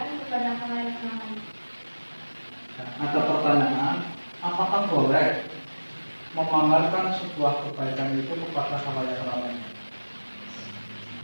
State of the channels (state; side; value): inverted; both; correlation -1.00